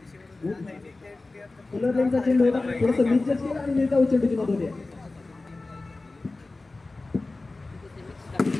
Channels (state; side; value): quieter; right; 3.3 dB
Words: फुलरलेनचा चेंडू होता थोडंसं निश्चित केला आणि निर्धाव चेंडूची नोंद होते